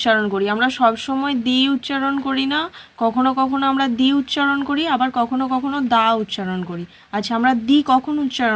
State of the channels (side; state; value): both; identical; correlation 1.00